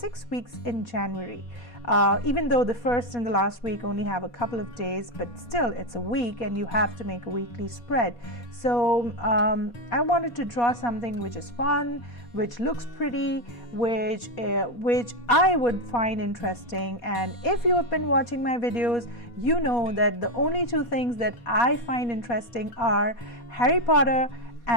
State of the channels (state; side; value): late; right; 4.2 ms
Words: weeks in January. Even though the first and the last week only have a couple of days, but still it's a week and you have to make a weekly spread. So I wanted to draw something which is fun, which looks pretty, which I would find interesting. And if you have been watching my videos, you know that the only two things that I find interesting are Harry Potter